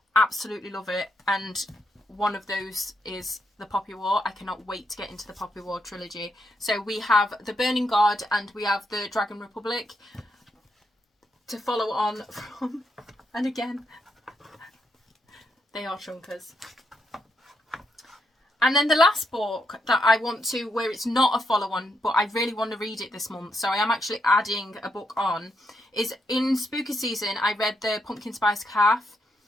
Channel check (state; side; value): normal; both; correlation 0.80